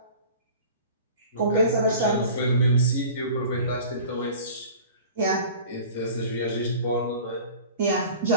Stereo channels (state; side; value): inverted; both; correlation -0.42